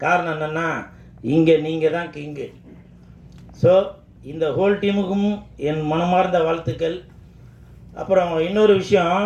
காரணம் என்னென்னா, இங்கே நீங்கள் தான் கிங்கு. ஸோ இந்த ஹோல் டீமுக்கும் என் மனமார்ந்த வாழ்த்துக்கள். அப்புறம் இன்னொரு விஷயம்,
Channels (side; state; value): both; identical; correlation 1.00